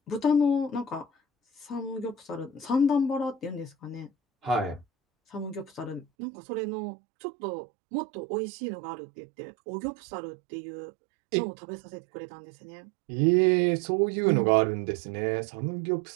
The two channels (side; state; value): left; drops out; at 6.1 s